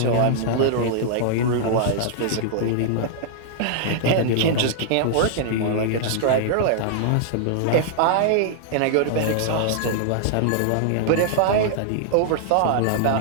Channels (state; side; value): different; both; correlation -0.01